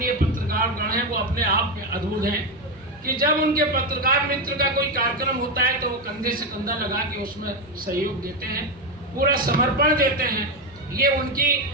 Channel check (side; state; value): both; normal; correlation 0.10